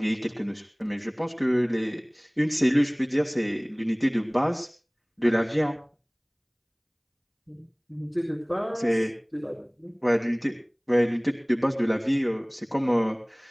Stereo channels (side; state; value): both; identical; correlation 1.00